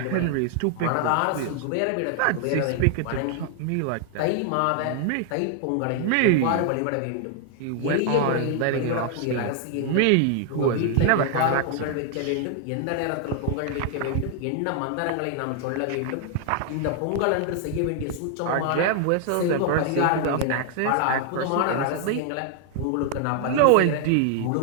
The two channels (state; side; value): different; both; correlation 0.00